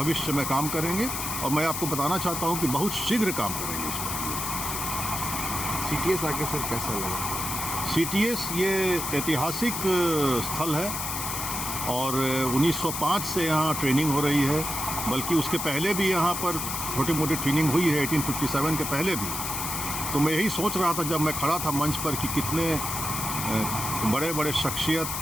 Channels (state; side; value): noise; left; hiss, 3 dB below the sound